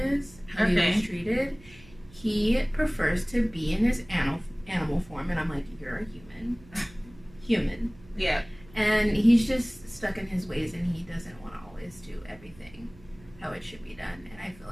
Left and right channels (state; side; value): noise; right; hum, 23 dB below the sound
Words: is, how he was treated, he prefers to be in his animal form, and I'm like, you're a human. Yeah. And he's just stuck in his ways, and he doesn't want to always do everything how it should be done, and I feel